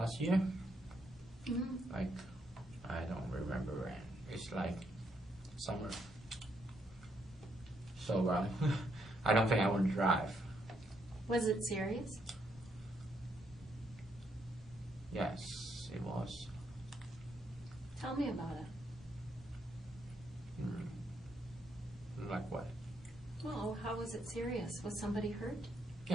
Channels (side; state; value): both; normal; correlation 0.76